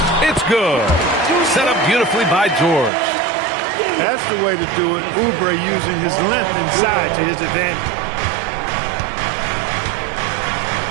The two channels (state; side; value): drops out; left; at 2.9 s